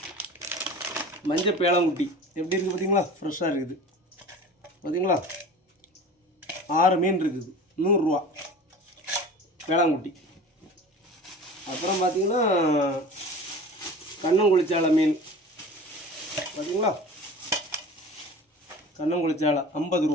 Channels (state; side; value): normal; both; correlation 0.38